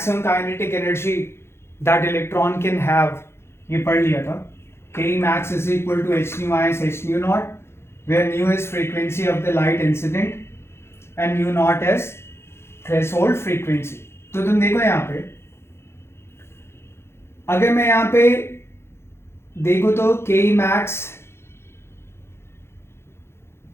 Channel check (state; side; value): late; right; 0.12 ms